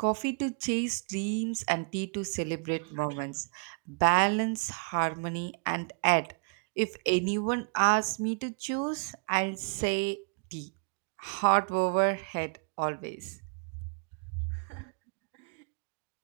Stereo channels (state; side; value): quieter; left; 37.2 dB